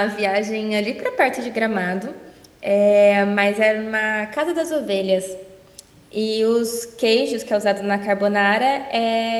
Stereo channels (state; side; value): identical; both; correlation 1.00